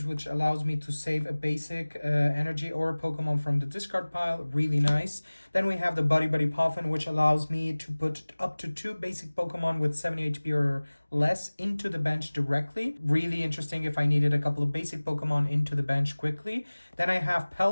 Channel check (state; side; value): inverted; both; correlation -1.00